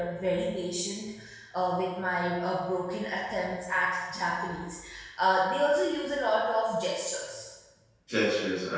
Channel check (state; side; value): identical; both; correlation 1.00